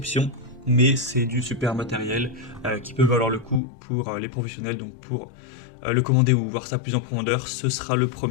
mais c'est du super matériel qui peut valoir le coup pour les professionnels. Donc pour le commander ou voir ça plus en profondeur, ce sera le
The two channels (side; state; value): right; drops out; at 3.6 s